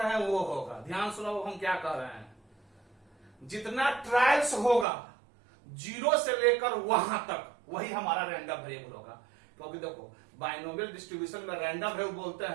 हैं वो होगा। ध्यान सुनो हम क्या कह रहे हैं, जितना ट्रायल्स होगा 0 से लेकर वहां तक वही हमारा रैंडम वेरिएबल होगा। क्योंकि देखो बाइनोमियल डिस्ट्रीब्यूशन में रैंडम वेरिएबल बोलते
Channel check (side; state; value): left; drops out; at 4.9 s